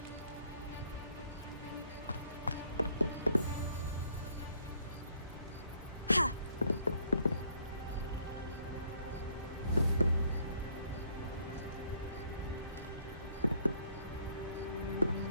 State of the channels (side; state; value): both; inverted; correlation -0.64